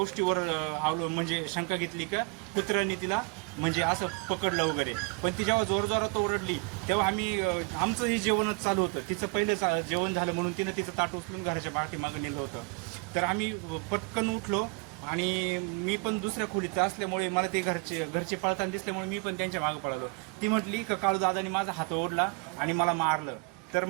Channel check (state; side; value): quieter; left; 29.9 dB